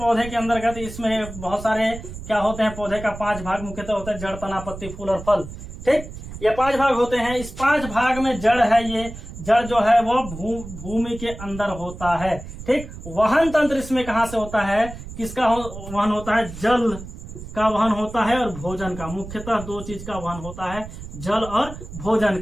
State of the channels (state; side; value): noise; right; rumble, 12 dB below the sound